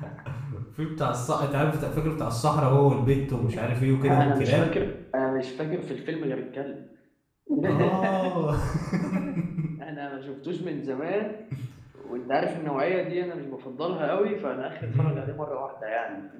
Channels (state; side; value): identical; both; correlation 1.00